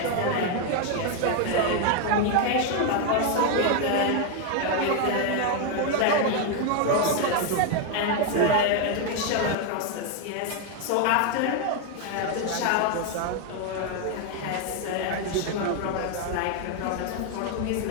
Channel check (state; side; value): different; both; correlation 0.01